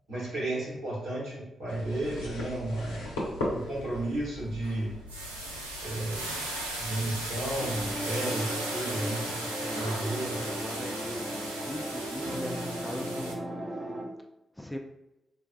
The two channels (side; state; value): both; normal; correlation 0.75